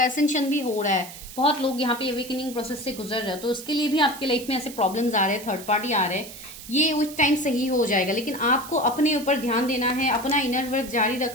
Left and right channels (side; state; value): right; noise; hiss, 14 dB below the sound